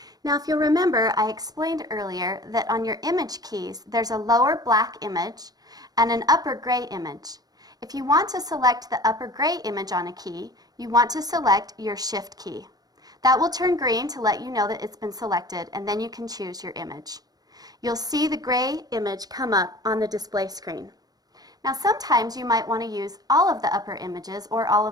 Now, if you'll remember, I explained earlier that on your image keys, there's a lower black image and an upper gray image. If you want to select the upper gray image on a key, you want to select your Shift key. That will turn green to let you know that it's been selected, and then you can choose your image. You'll see the gray image come up on the display screen. Now, sometimes you might want to use all of the upper images or all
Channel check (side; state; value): left; late; 0.19 ms